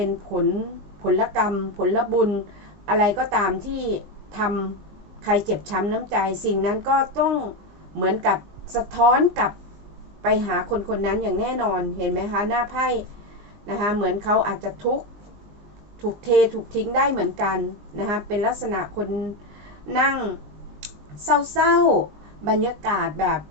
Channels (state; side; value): late; left; 19 ms